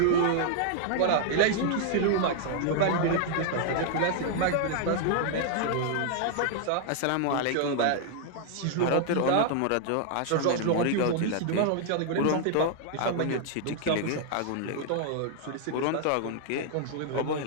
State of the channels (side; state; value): both; different; correlation 0.00